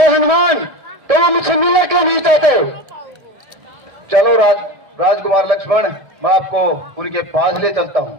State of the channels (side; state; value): left; late; 1.6 ms